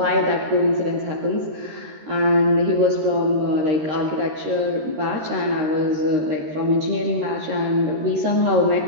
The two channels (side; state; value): left; late; 13 ms